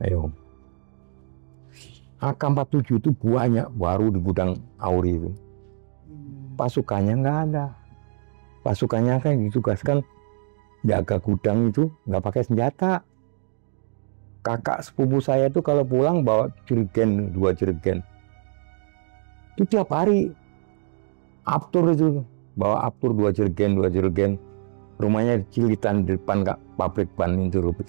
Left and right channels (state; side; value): silent; left; digital silence